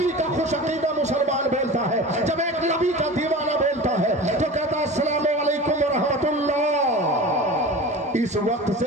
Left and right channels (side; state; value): both; normal; correlation 0.34